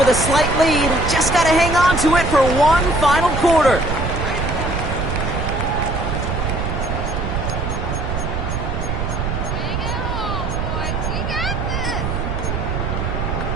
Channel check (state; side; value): noise; right; rumble, 2 dB below the sound